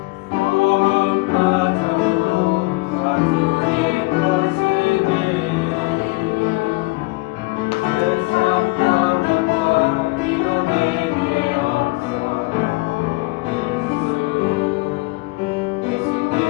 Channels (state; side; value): quieter; right; 23.8 dB